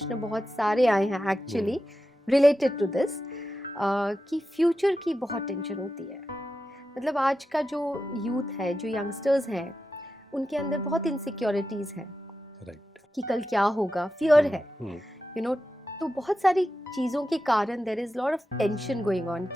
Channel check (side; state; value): both; normal; correlation 0.90